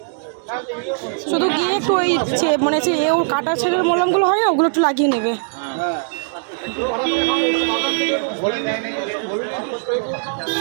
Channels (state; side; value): silent; left; digital silence